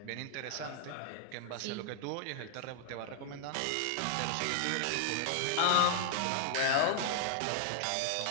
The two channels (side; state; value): both; different; correlation 0.00